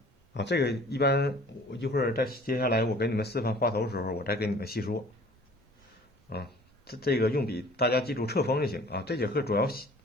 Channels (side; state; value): both; normal; correlation 0.50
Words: 啊，这个一般我一会儿再接下来我给你们示范画头的时候，我再给你们细说。啊，这个用笔大家记住侧锋就行啊。这节课主要